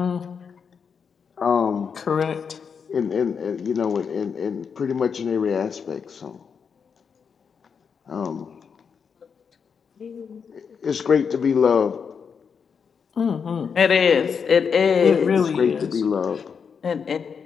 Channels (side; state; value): right; quieter; 6.4 dB